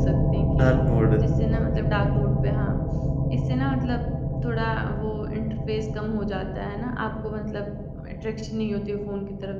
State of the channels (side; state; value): both; identical; correlation 1.00